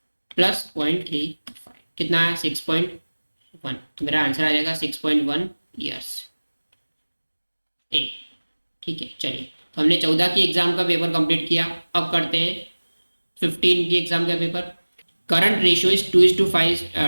प्लस 0.35 कितना है 6.1, तो मेरा आंसर आ जाएगा 6.1 ईयर्स ए। ठीक है, चलिए तो हमने 14 की एग्जाम का पेपर कंप्लीट किया। अब करते हैं 15 की एग्जाम का paper. Current ratio is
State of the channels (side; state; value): both; inverted; correlation -1.00